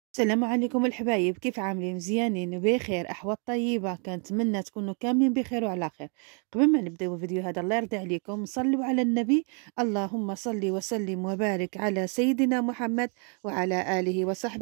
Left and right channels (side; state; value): left; quieter; 39.1 dB